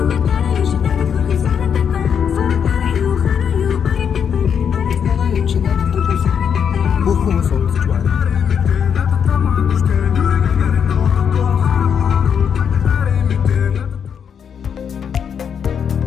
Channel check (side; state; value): right; quieter; 7.5 dB